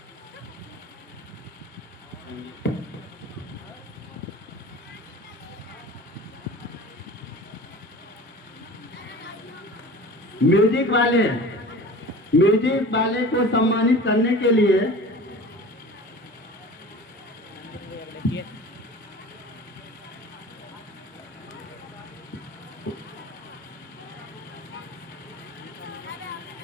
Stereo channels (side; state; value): both; normal; correlation 0.38